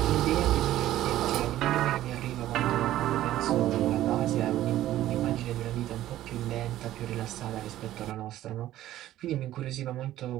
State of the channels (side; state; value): left; quieter; 13.8 dB